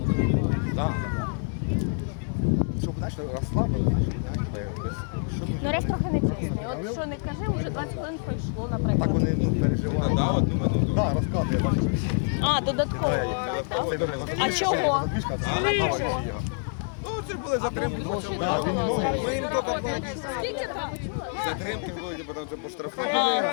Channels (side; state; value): right; silent; 57 dB below the other